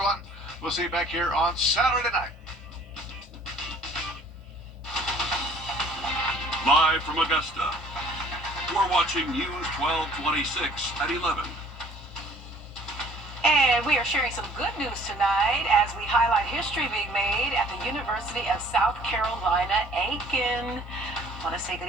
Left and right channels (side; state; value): both; normal; correlation 0.54